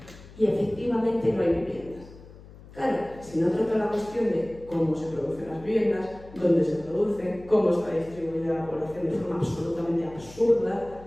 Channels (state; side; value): noise; left; hum, 19 dB below the sound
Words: y efectivamente no hay viviendas. Claro, si no trato la cuestión de cómo se producen las viviendas, dónde se producen, cómo está distribuida la población de forma absolutamente absurda,